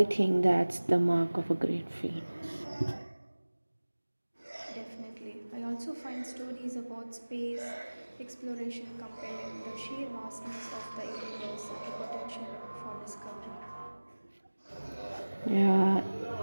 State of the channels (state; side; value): inverted; both; correlation -1.00